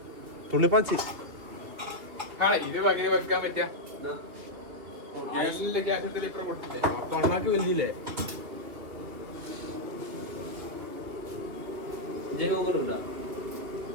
തുള്ളിപ്പാച്ചി ഇത് എങ്ങനെ വെക്കാൻ പറ്റിയ ഗ്യാസിലെ ഗ്യാസത്തിൽ ഇപ്പുറം കൊടുത്തില്ലേ തൊള്ളാക്ക് വലിയില്ലേ ജൈവങ്ങളുണ്ടോ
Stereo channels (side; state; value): left; late; 2.8 ms